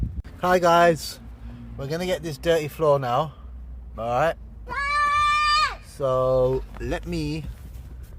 Hi guys, we're gonna get this dirty floor now. Alright, so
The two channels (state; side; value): identical; both; correlation 1.00